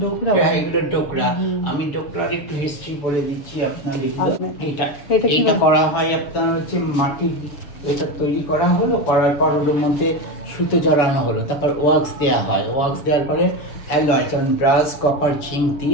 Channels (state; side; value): late; right; 6.4 ms